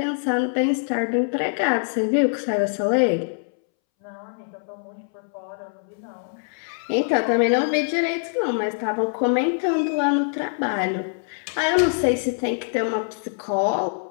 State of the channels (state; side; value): silent; right; 63 dB below the other